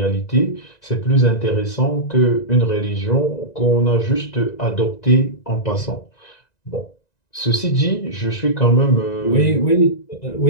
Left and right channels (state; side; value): late; right; 1.9 ms